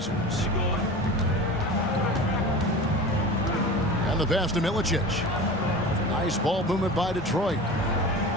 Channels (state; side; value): normal; both; correlation 0.34